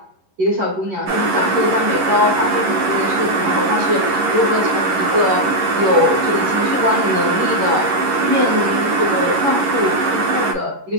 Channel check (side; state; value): left; late; 11 ms